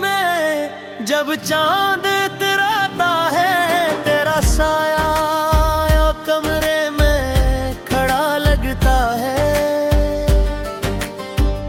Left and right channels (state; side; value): identical; both; correlation 1.00